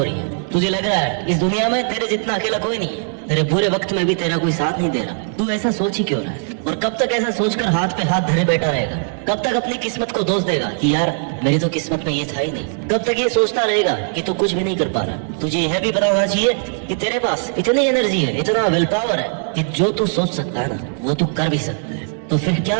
ही है। तुझे लग रहा है इस दुनिया में तेरे जितना अकेला कोई नहीं है, तेरे बुरे वक्त में भी तेरा कोई साथ नहीं दे रहा। तू ऐसा सोच ही क्यों रहा है? और कब तक ऐसा सोचकर हाथ पे हाथ धरे बैठा रहेगा? कब तक अपनी किस्मत को दोष देगा कि यार मेरी तो किस्मत में ये था ही नहीं? कब तक ये सोचता रहेगा कि तू कुछ भी नहीं कर पा रहा? तुझे यह भी पता होना चाहिए कि तेरे पास इतनी एनर्जी है, इतना विल पावर है कि जो तू सोच सकता है ना वो तू कर भी सकता है। तो फिर क्या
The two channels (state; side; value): silent; left; digital silence